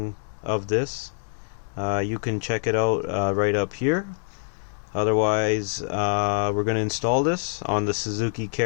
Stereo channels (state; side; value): silent; right; digital silence